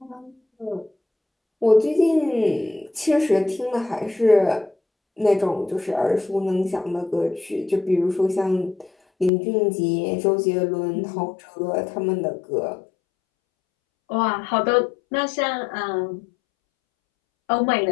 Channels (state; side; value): drops out; right; at 9.3 s